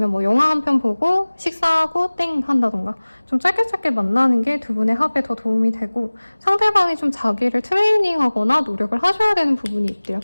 뭐 영화 한 편 보고 식사하고 땡 한다던가 좀 짧게 만나는 게 두 분의 합에 더 도움이 되고 상대방이 좀 자기를 트레이닝하거나 노력을 하셔야 되는 부분이 있대요.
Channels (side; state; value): both; inverted; correlation -1.00